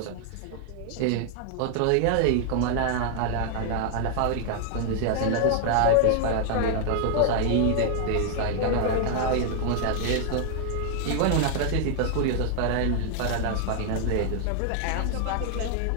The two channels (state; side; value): different; both; correlation 0.00